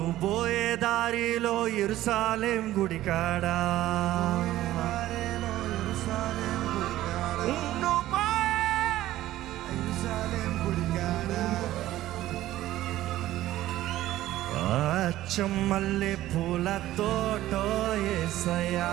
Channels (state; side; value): quieter; left; 14.7 dB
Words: పోయే దారిలో యెరూషలేం గుడికాడా, చెమ్మల్లె పూల తోటో యేసయ్యా,